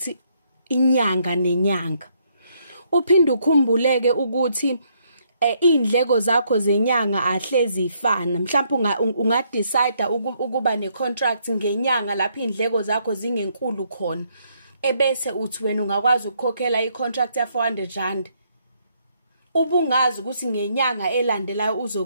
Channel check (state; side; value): inverted; both; correlation -0.72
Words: inyanga nenyanga. Uphinde ukhumbuleke ukuthi indleko zakho zenyanga ahlezi ifana. Mhlawumbe ungadecide ukuba ne-contract ngenyanga lapho indleko zakho zingenkulu khona. Ebese uthi wena ungakwazi ukukhokhela i-contract ya 400 rand. Ubungazi ukuthi ngenyanga elandelayo